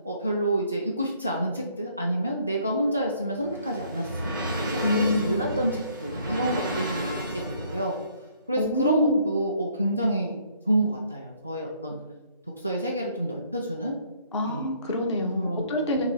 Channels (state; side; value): inverted; both; correlation -0.63